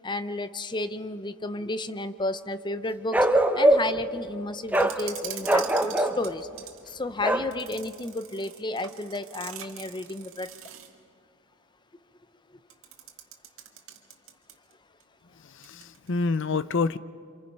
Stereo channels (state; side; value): normal; both; correlation 0.62